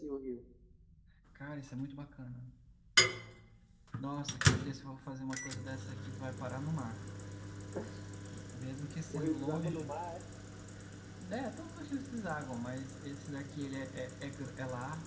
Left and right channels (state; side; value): identical; both; correlation 1.00